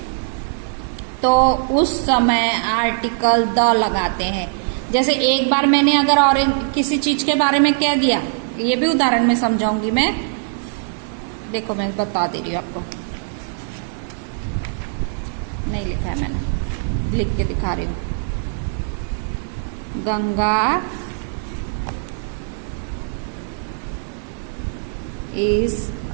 तो उस समय आर्टिकल द लगाते हैं। जैसे एक बार मैंने अगर और किसी चीज के बारे में कह दिया, ये भी उदाहरण में समझाऊंगी मैं, देखो मैं बता दे रही हूँ आपको, नहीं लिखा है मैंने, लिख के दिखा रही हूँ। Ganga is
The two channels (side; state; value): left; silent; digital silence